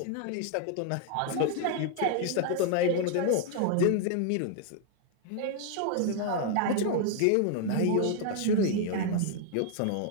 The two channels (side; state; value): both; different; correlation 0.00